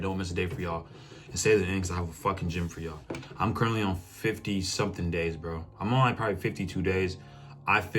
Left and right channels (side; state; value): both; identical; correlation 1.00